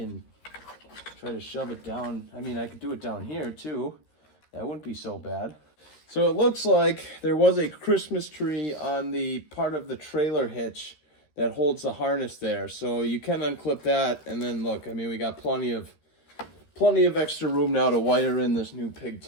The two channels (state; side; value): late; right; 13 ms